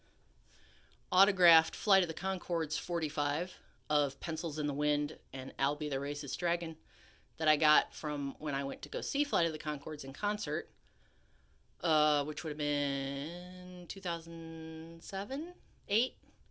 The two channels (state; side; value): identical; both; correlation 1.00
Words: autographed Flight of the Conchords 45 of Pencils in the Wind and Albie the Racist Dragon that I got from when I went to go see Flight of the Conchords in concert, which would have been 2007, 8,